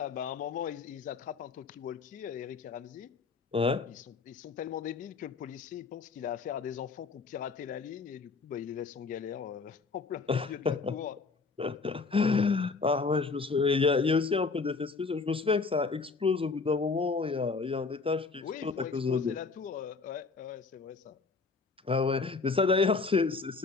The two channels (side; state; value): right; quieter; 4.4 dB